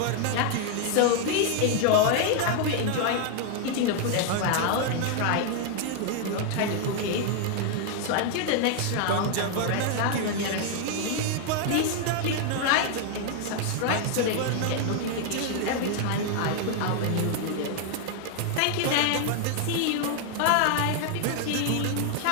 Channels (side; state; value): both; different; correlation 0.00